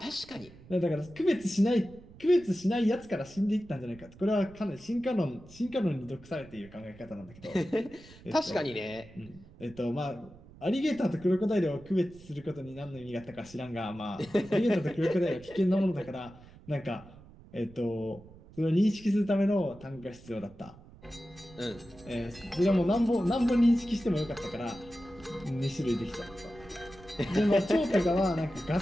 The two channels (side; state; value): right; noise; rumble, 21 dB below the sound